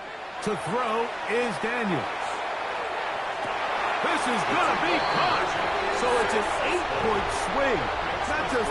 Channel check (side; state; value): both; identical; correlation 1.00